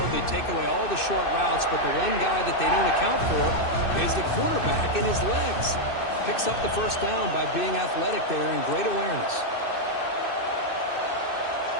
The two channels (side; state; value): right; late; 2.6 ms